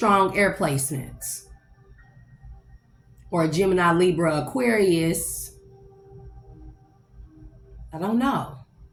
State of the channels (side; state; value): both; identical; correlation 1.00